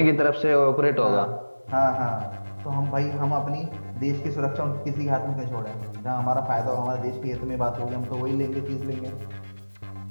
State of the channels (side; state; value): both; inverted; correlation -1.00